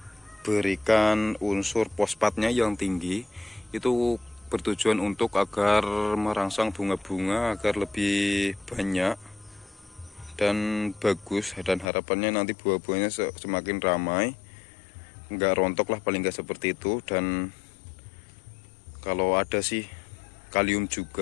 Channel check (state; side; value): drops out; right; at 11.9 s